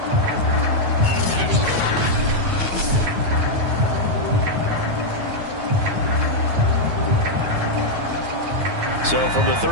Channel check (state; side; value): late; left; 9.3 ms